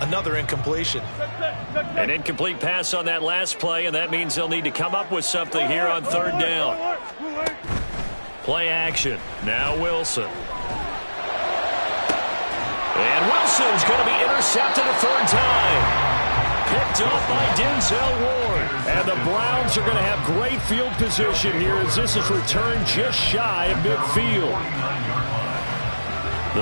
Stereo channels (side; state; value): both; inverted; correlation -1.00